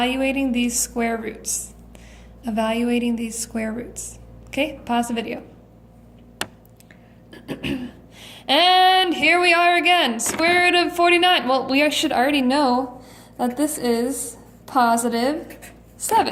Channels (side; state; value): both; identical; correlation 1.00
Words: these square roots. Evaluating these square roots. Okay, pause the video. And here we are again, square root of 49. Well, we should already know that this is positive